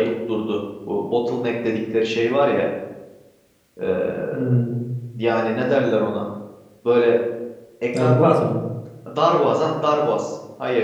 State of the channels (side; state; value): both; identical; correlation 1.00